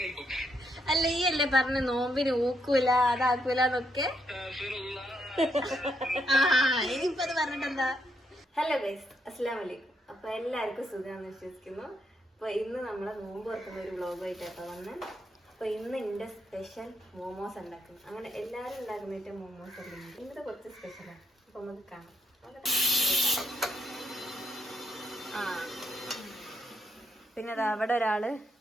അല്ല, ഈ അല്ലേ പറഞ്ഞ നോമ്പിന് ഊക്കൂല അതാക്കൂലെന്നൊക്കെ. ഇനിയിപ്പോ അത് പറഞ്ഞിട്ടെന്താ. ഹലോ ഗൈസ്, അസ്സലാമു അലൈക്കും. അപ്പൊ എല്ലാവർക്കും സുഖമാണെന്ന് വിശ്വസിക്കുന്നു. അപ്പൊ ഇന്ന് നമ്മളെ നോമ്പ് തുറക്കുന്ന ഒരു വ്ളോഗായിട്ടാട്ടോ വന്ന്. അപ്പൊ ഇന്ന് എന്റെ സ്പെഷ്യൽ മോമോസ് ഉണ്ടാക്കുന്നു. അങ്ങനെ എല്ലാവരും ഉണ്ടാക്കുന്നിട്ട് മോമോസ് അല്ലെങ്കിൽ ഇന്നത്തെ കുറച്ച് സ്പെഷ്യലാണ്. അപ്പൊ നമുക്ക് കാണാം. പിന്നെ അത് അവിടെ ഒരാള്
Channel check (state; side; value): normal; both; correlation 0.78